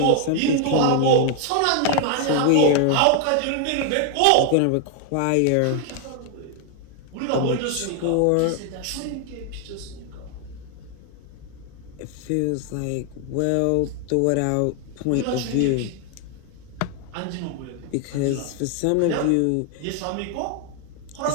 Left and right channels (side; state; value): both; different; correlation 0.00